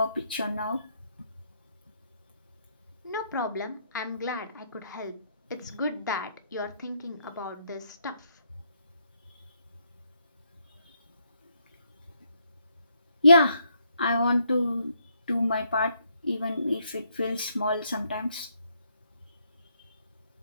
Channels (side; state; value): both; inverted; correlation -0.74